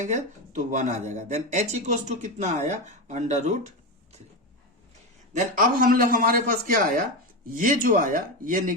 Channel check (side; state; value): both; normal; correlation 0.15